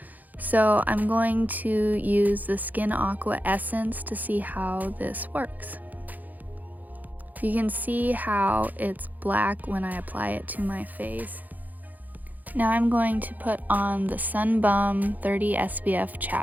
So I'm going to use the Skin Aqua Essence to see how this works. You can see how it's black when I apply it to my face. Now I'm going to put on the SunBum 30 SPF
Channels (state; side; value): late; left; 0.082 ms